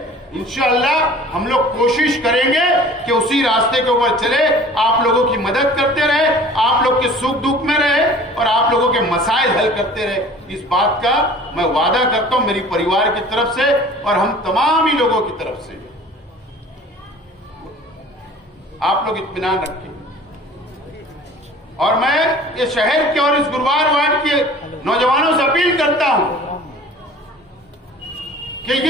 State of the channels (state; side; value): normal; both; correlation 0.46